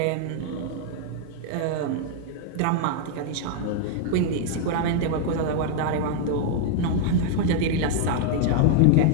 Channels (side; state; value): both; different; correlation 0.00